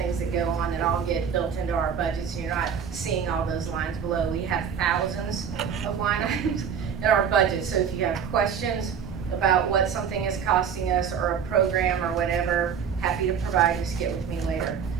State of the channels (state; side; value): quieter; left; 7.3 dB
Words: that go on that all get built into our budget, so you're not seeing all those lines below. We have thousands of line items in our budget, so if you have questions about what something is costing us or a program or whatever, happy to provide, just get with me later.